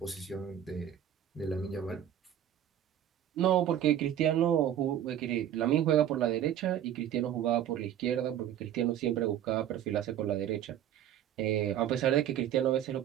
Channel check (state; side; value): quieter; left; 10.7 dB